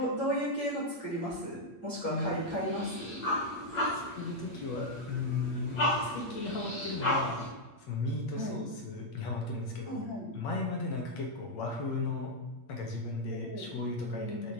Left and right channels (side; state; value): right; late; 8.6 ms